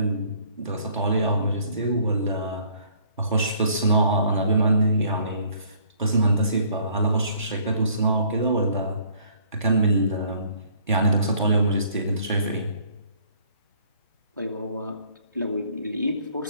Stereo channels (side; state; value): both; inverted; correlation -0.60